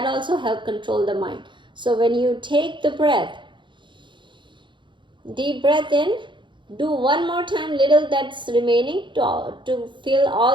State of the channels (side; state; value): left; late; 0.23 ms